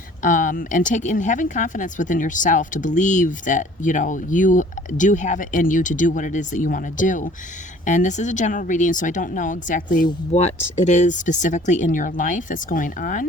and having confidence within yourself to believe that you do have it in you to do what it is that you want to do. And this is a general reading, so I don't know exactly what it is specifically in your life that's going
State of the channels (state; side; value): normal; both; correlation 0.52